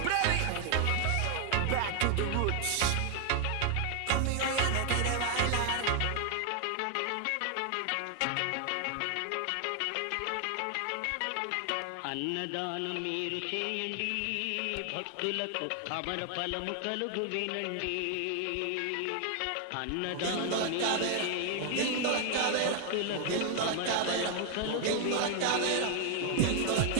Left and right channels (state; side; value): different; both; correlation 0.00